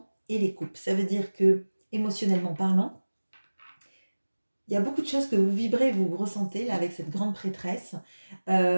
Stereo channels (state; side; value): inverted; both; correlation -1.00